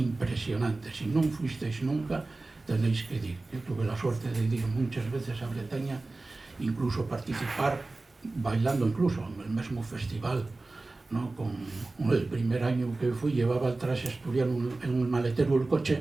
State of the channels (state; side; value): quieter; left; 3.3 dB